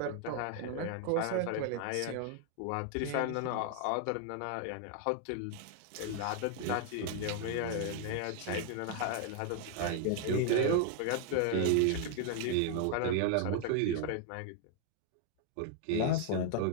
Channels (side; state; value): both; different; correlation 0.00